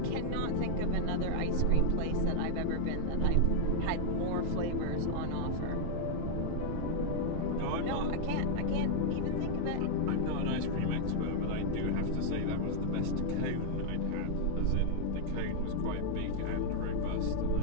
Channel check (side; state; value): both; different; correlation 0.00